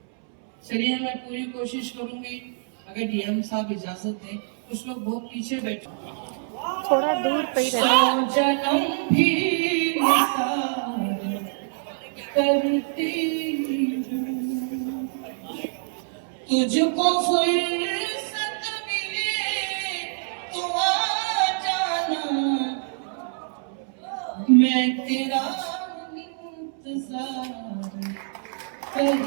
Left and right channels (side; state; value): left; silent; 61 dB below the other